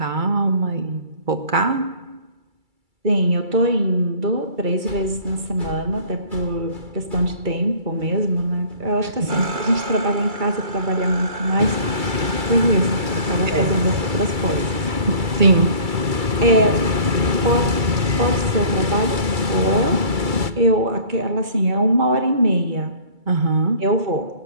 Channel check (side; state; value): left; late; 2.3 ms